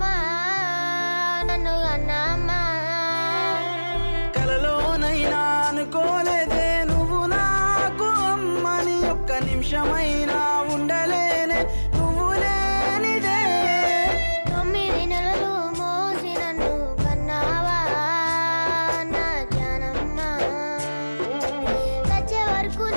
నన్ను కన్నామ్మా. కలలోనైనా అనుకోలేదే నువ్వు నాకు అమ్మని, ఒక్క నిమిషమైనా ఉండలేనే నువ్వు లేనిదే. 9 నెలలు మోసి నన్ను కన్నావా నా జానమ్మ, చచ్చే వరకు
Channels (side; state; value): both; inverted; correlation -1.00